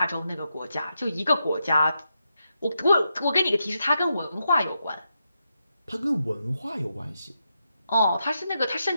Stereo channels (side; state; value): both; inverted; correlation -0.84